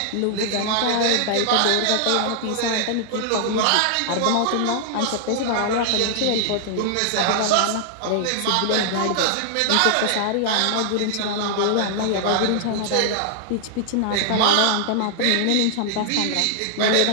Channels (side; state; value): both; different; correlation 0.00